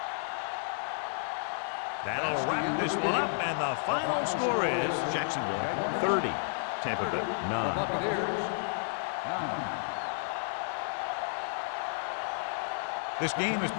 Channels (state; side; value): silent; right; digital silence